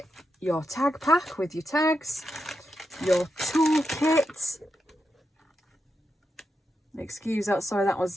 Your tag pack with your tags. Your toolkit. Excuse that, sorry, that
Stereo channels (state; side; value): normal; both; correlation 0.86